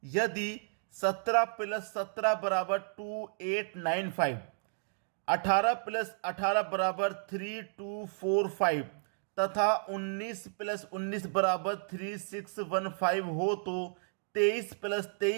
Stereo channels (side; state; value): left; silent; 56 dB below the other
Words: यदि 17 प्लस 17 बराबर 2895, 18 प्लस 18 बराबर 3245 तथा 19 प्लस 19 बराबर 3615 हो तो 23 प्लस